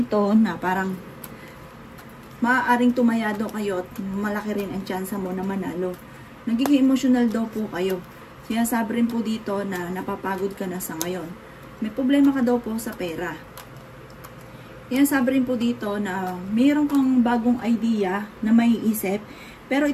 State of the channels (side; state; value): both; identical; correlation 1.00